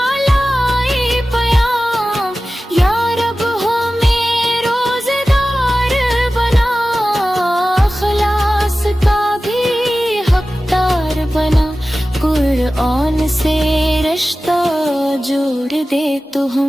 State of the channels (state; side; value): normal; both; correlation 0.95